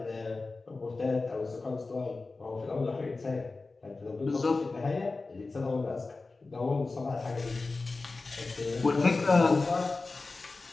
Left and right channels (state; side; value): quieter; right; 3.6 dB